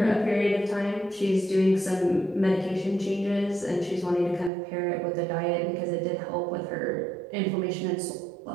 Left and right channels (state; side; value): drops out; left; at 4.5 s